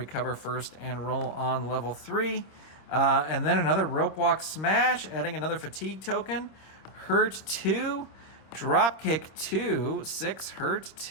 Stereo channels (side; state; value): right; late; 26 ms